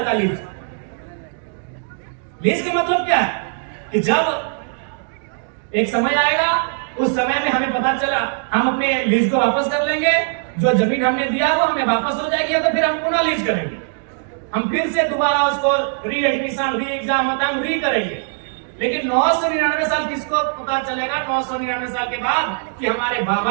का लीज। लीज का मतलब क्या है कि जब एक समय आएगा, उस समय में हमें पता चला हम अपने लीज को वापस कर लेंगे, जो जमीन हमने दिया वो हमें वापस हो जाएगी, तो फिर हम पुनः लीज करेंगे, हम फिर से दोबारा उसको री एडमिशन री एग्जाम होता है, हम री करेंगे। लेकिन 999 साल किसको पता चलेगा 999 साल के बाद कि हमारे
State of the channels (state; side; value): silent; left; digital silence